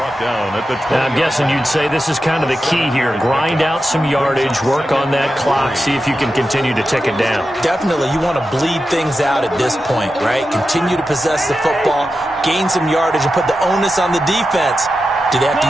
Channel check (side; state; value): both; normal; correlation 0.90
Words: Now, I'm guessing you'd say this is kind of the key here. Grind out some yardage, work on that clock, see if you can continue to tick it down. Definitely. You want to bleed things out at this point, right? Continue to possess the football, gain some yardage, and put the onus on the defense. Do they have to